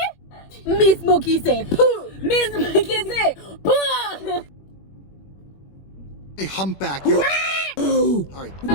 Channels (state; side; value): late; right; 21 ms